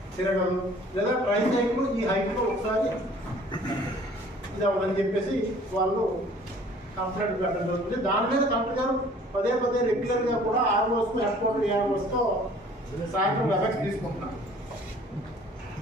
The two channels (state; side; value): normal; both; correlation 0.52